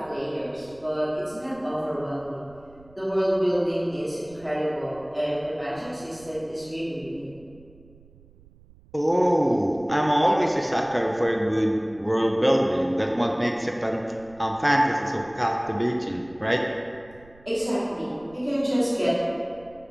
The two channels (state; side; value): noise; right; rumble, 25 dB below the sound